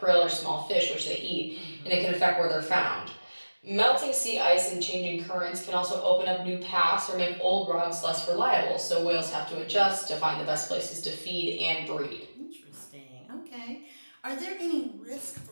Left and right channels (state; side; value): inverted; both; correlation -1.00